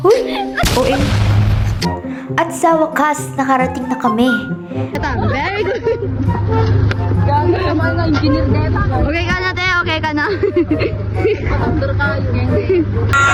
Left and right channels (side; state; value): both; identical; correlation 1.00